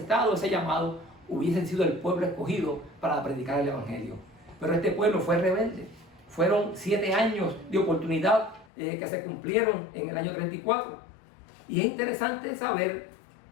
ese llamado, hubiesen sido el pueblo escogido para predicar el Evangelio. Pero este pueblo fue rebelde. Fueron 7 años de oportunidad que se cumplieron en el año 34. Y es interesante saber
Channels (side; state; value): right; drops out; at 8.7 s